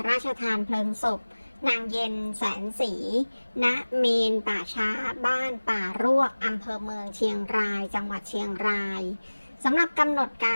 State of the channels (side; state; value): both; inverted; correlation -1.00